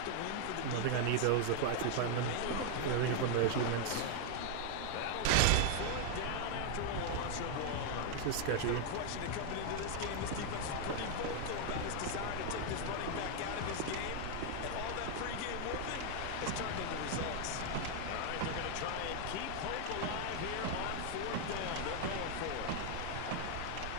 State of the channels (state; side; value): different; both; correlation 0.00